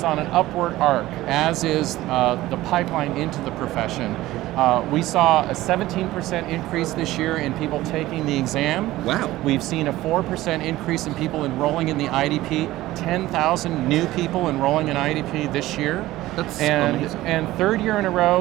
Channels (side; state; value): left; quieter; 16.6 dB